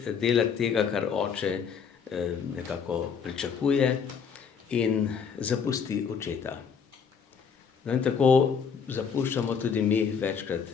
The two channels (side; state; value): right; quieter; 6.5 dB